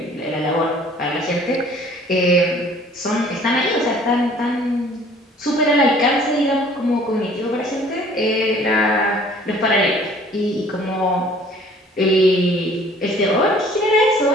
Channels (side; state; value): both; normal; correlation 0.53